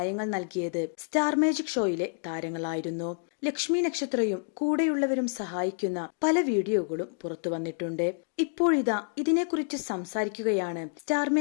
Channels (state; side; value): silent; right; digital silence